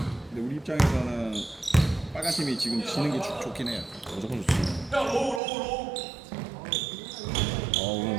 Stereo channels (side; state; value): left; drops out; at 5.4 s